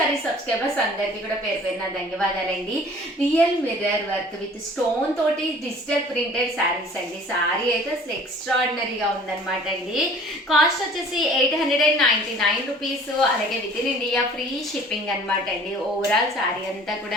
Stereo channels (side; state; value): both; normal; correlation 0.50